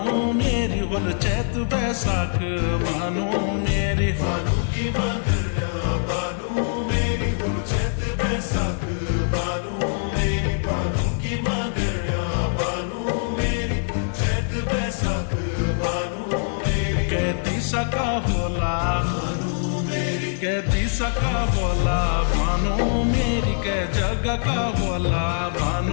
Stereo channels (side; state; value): right; silent; 63 dB below the other